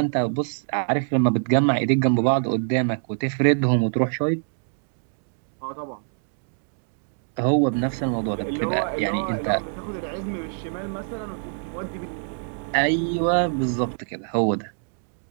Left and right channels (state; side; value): silent; left; digital silence